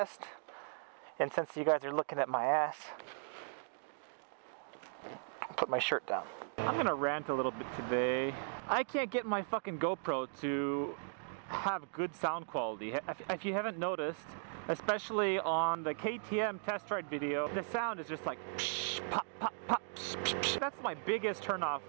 And since you guys are looking at my ass, I'll put my shirt down. I'm gonna rant a little bit today. I can't get my fucking GoPro to have good sound quality. If you haven't noticed, especially on the KTM test ride video, the sound is just like psh, pop, pop, pop, psh, psh, psh. That's my biggest turnoff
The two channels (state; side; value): silent; left; digital silence